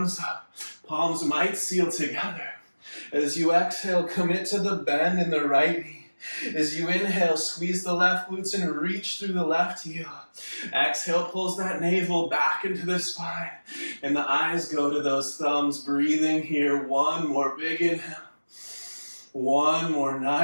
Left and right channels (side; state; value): both; inverted; correlation -1.00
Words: up. Palms might seal together. As you exhale, commit to the bend in the right knee. As you inhale, squeeze the left glutes and reach through the left heel. Exhale, pulls that navel back into the spine. And the eyes go to those thumbs, breathing here. One more big inhale. One more